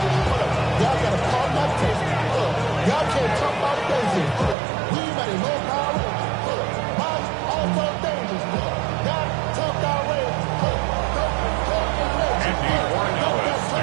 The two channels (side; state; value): left; drops out; at 4.5 s